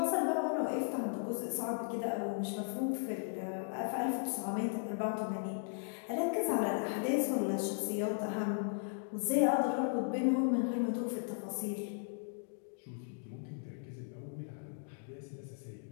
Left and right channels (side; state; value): right; silent; digital silence